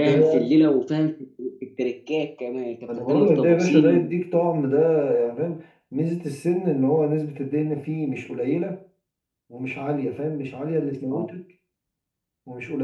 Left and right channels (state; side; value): identical; both; correlation 1.00